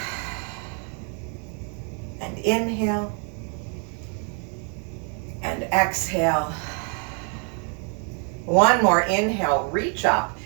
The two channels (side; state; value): left; quieter; 39.8 dB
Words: And inhale and exhale. One more inhale, reach up,